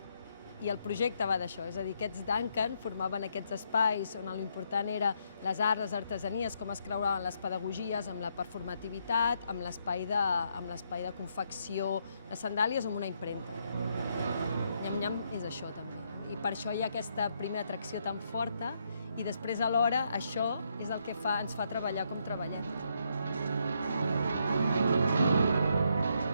I el projecte va d'això, és a dir, aquests Duncan formaven aquests espais on l'important era les arts, les artesanies, com es creuaven les pedagogies amb la performativitat, amb l'espai de confecció de sandàlies o amb una impremta. Nyam-nyam és això també. I per això hi ha aquesta primera atracció tan forta i després alhora això és el que ens fa treballar com treballem.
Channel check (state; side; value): inverted; both; correlation -0.76